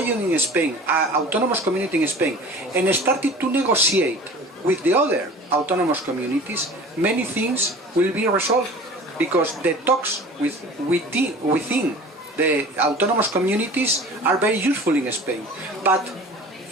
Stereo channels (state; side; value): normal; both; correlation 0.42